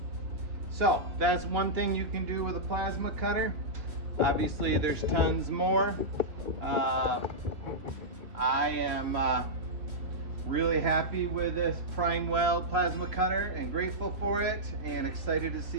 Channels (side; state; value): left; late; 3.2 ms